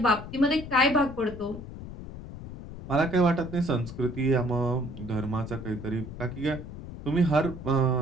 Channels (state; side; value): noise; left; rumble, 12 dB below the sound